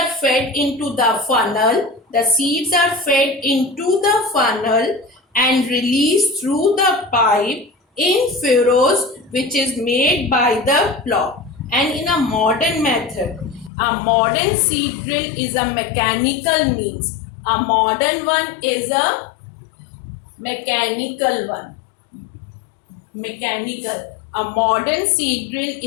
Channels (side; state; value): right; drops out; at 13.7 s